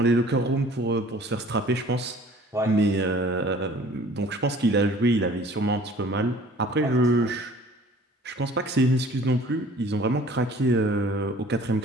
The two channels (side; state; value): both; normal; correlation 0.50